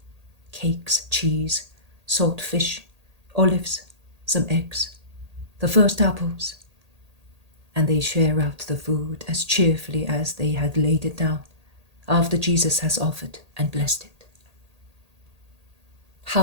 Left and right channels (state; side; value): late; left; 1.8 ms